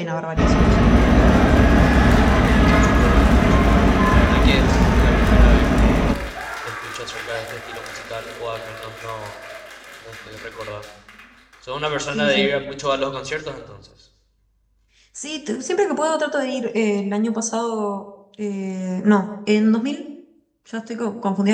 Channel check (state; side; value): identical; both; correlation 1.00